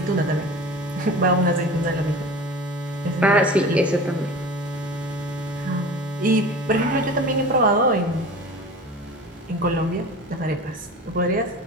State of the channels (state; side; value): normal; both; correlation 0.36